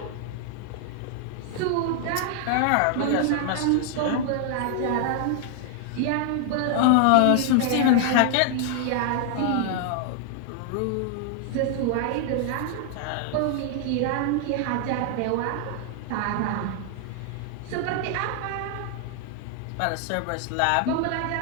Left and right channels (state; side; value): different; both; correlation 0.00